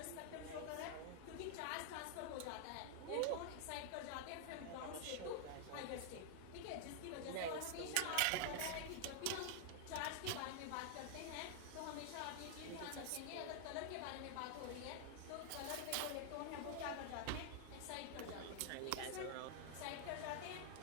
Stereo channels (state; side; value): different; both; correlation 0.00